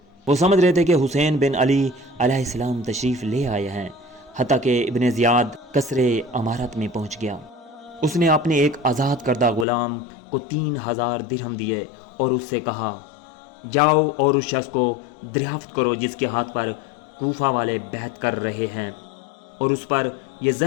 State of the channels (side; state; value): right; drops out; at 9.7 s